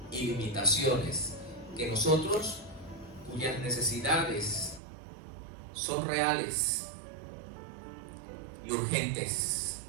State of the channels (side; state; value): left; drops out; at 4.8 s